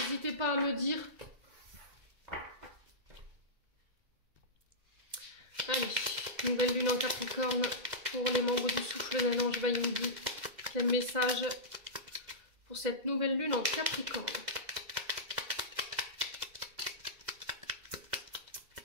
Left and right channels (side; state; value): left; late; 2.0 ms